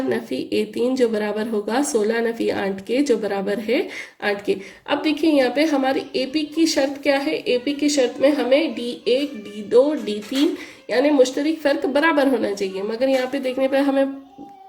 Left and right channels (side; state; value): both; identical; correlation 1.00